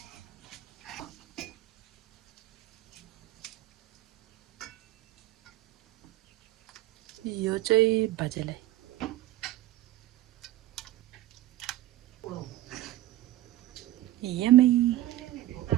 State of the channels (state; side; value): quieter; left; 15.4 dB